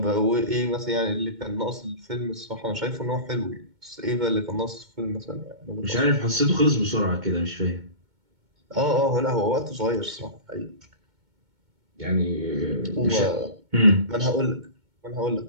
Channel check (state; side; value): late; left; 2.2 ms